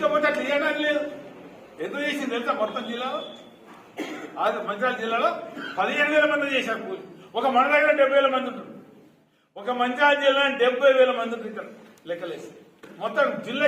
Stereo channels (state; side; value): identical; both; correlation 1.00